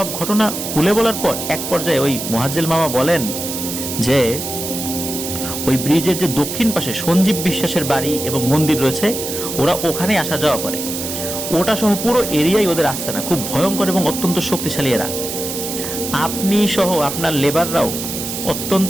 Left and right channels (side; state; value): right; noise; hiss, 6 dB below the sound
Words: ঘটনা খুলে বলার পর এক পর্যায়ে ওই মোয়াজ্জেল মামা বলেন যে ওই ব্রিজের যে দক্ষিণ পাশে সঞ্জীব বিশ্বাসের বাড়ি এবং মন্দির রয়েছে, ওরা ওখানে আসা যাওয়া করে, ওটা সহ পুরো এরিয়াই ওদের আস্তানা, খুব ভয়ঙ্কর এবং অত্যন্ত শক্তিশালী এরা। আপনি সহ আপনার লেবাররাও